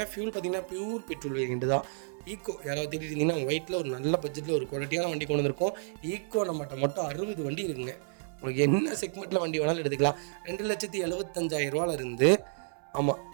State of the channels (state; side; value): silent; left; 57 dB below the other